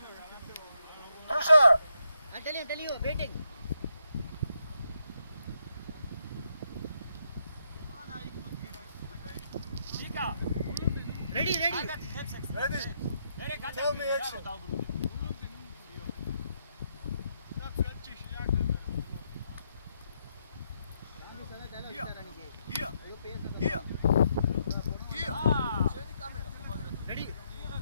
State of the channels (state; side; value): inverted; both; correlation -0.78